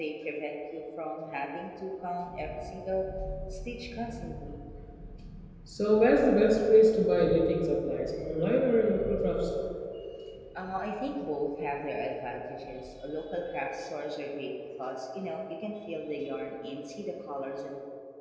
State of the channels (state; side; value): identical; both; correlation 1.00